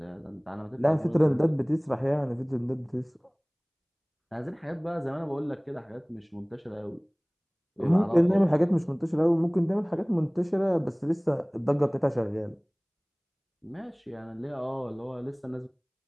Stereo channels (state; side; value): identical; both; correlation 1.00